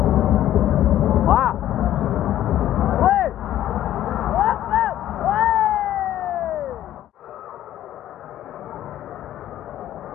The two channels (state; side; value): quieter; right; 12.6 dB